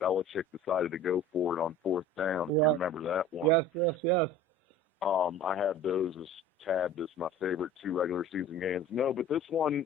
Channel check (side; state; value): both; normal; correlation 0.42